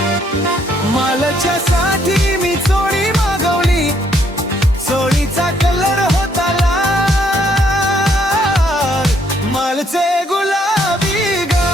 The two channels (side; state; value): both; normal; correlation 0.69